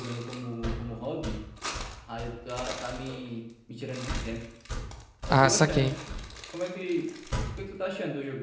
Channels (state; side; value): identical; both; correlation 1.00